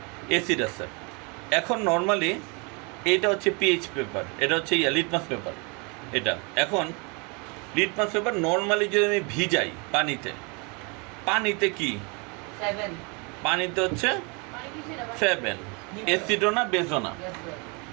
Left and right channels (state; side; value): quieter; left; 31.8 dB